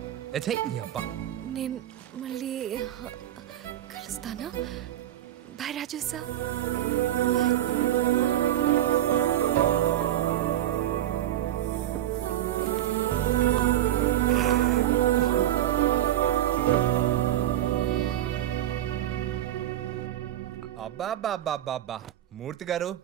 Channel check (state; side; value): quieter; left; 12.8 dB